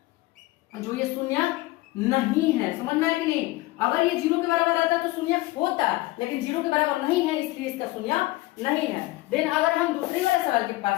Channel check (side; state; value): right; quieter; 19.6 dB